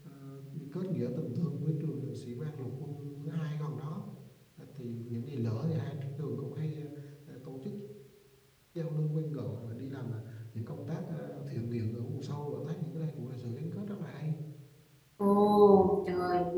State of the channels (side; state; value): both; identical; correlation 1.00